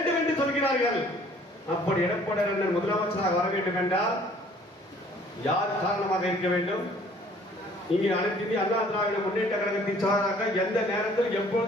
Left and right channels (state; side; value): normal; both; correlation 0.56